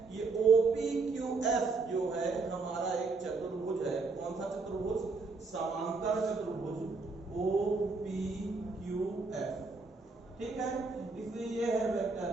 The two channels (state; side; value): quieter; left; 4.0 dB